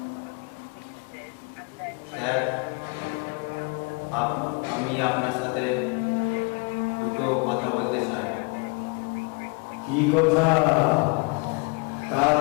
স্যার আমি আপনার সাথে দুটো কথা বলতে চাই। কি কথা?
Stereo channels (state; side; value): quieter; right; 31.8 dB